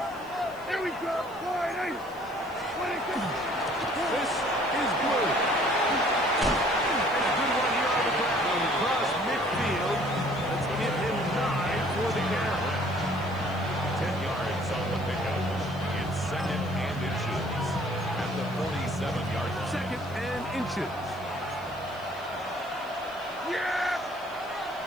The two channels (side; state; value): left; noise; hiss, 25 dB below the sound